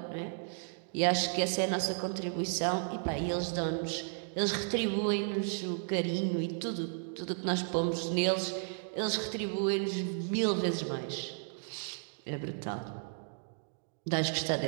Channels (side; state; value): left; silent; digital silence